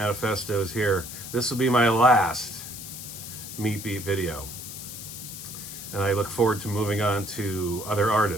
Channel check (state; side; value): noise; left; hiss, 10 dB below the sound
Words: is here. This will be my last Meat Beat video. And I look forward to moving on to other